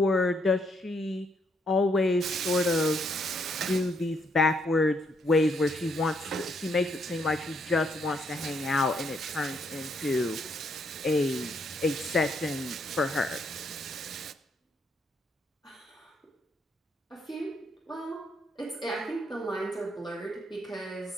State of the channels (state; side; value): normal; both; correlation 0.73